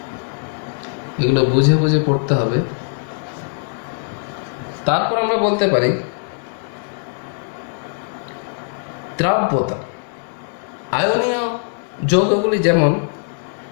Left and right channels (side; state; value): right; silent; digital silence